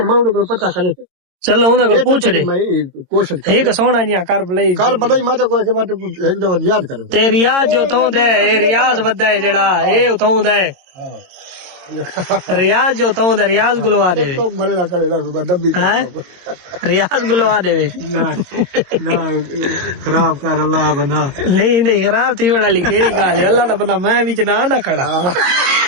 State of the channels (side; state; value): left; late; 22 ms